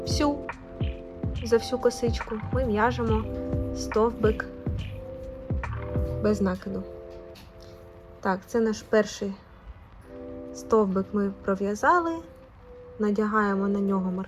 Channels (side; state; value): both; identical; correlation 1.00